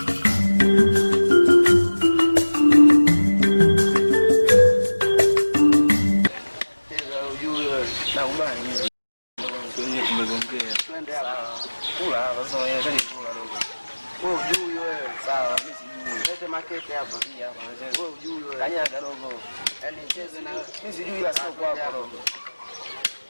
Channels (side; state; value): both; inverted; correlation -1.00